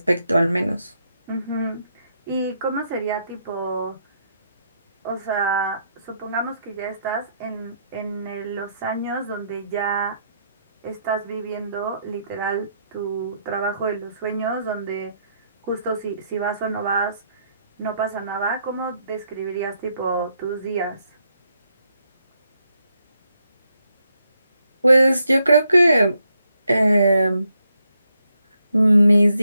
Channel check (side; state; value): both; inverted; correlation -0.77